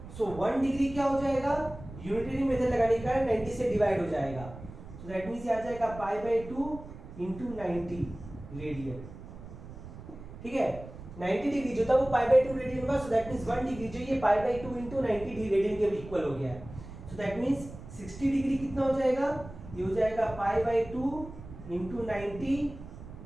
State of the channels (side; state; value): right; noise; rumble, 14 dB below the sound